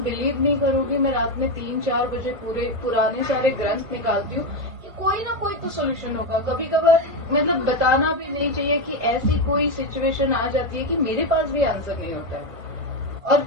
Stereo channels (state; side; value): late; left; 1.5 ms